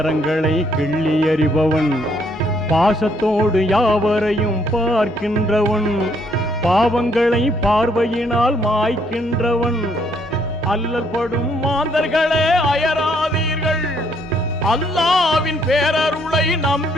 கிள்ளி எறிபவன், பாசத்தோடு யாவரையும் பார்க்கின்றவன், பாவங்களை பார்வையினால் மாய்க்கின்றவன். அல்லல் படும் மாந்தர்களே அயராதீர்கள், அல்லாவின் பேரருளை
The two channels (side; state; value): both; normal; correlation 0.69